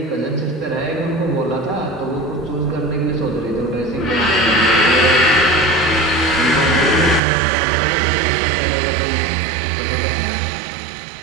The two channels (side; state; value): left; drops out; at 7.2 s